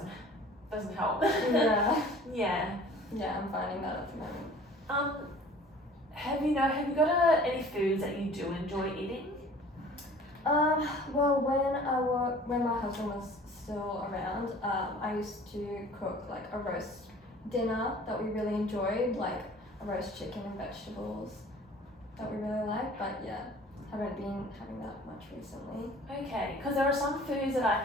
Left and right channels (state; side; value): normal; both; correlation 0.48